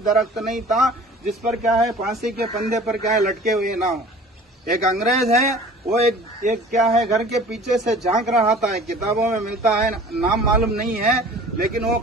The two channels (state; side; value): normal; both; correlation 0.45